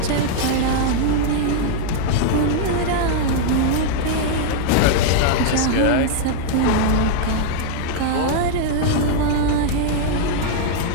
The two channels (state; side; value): different; both; correlation 0.00